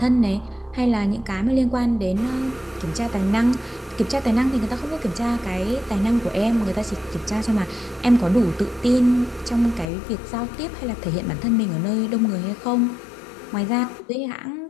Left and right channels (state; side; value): drops out; right; at 9.9 s